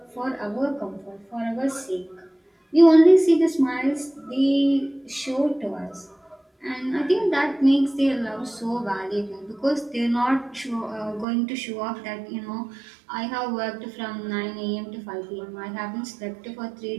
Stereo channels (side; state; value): left; drops out; at 11.2 s